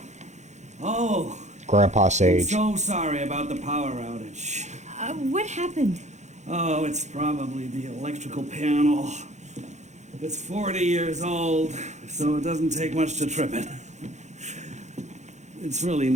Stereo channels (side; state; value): left; late; 0.34 ms